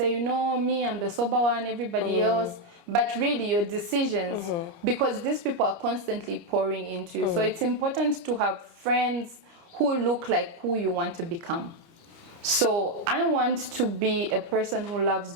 you know, me, I'm the sober one, everybody else. But really your decisions, because these people are constantly pouring into you. So it's important to have friends who look like who you want to become. So I want to be a person who loves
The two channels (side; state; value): left; late; 29 ms